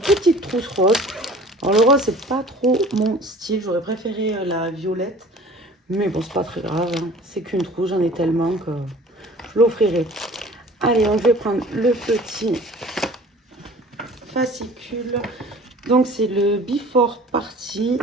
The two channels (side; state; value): both; normal; correlation 0.46